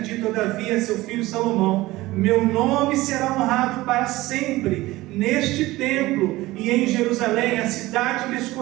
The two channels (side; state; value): left; quieter; 18.6 dB